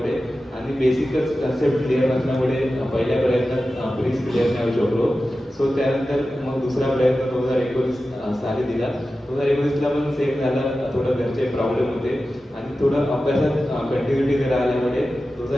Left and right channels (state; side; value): normal; both; correlation 0.93